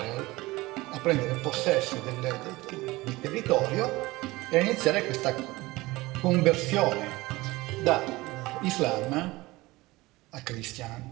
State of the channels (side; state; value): left; quieter; 20.5 dB